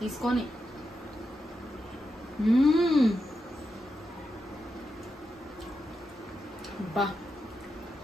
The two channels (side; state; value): both; normal; correlation 0.87